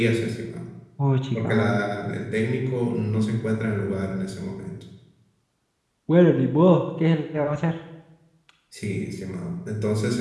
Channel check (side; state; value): both; identical; correlation 1.00